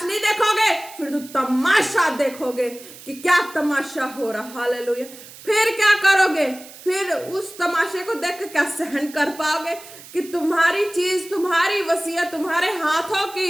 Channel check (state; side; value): noise; right; hiss, 18 dB below the sound